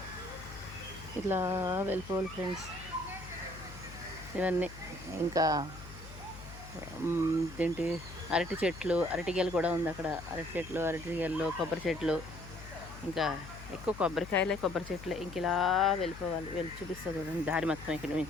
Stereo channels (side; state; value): left; noise; hum, 14 dB below the sound